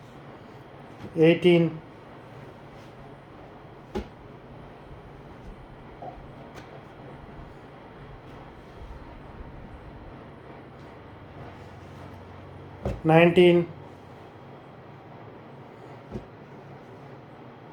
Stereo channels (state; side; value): identical; both; correlation 1.00